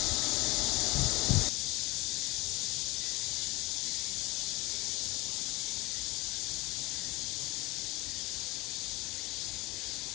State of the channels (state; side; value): quieter; right; 22.5 dB